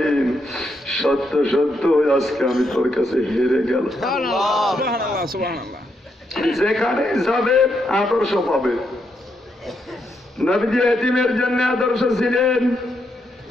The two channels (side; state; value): both; normal; correlation 0.79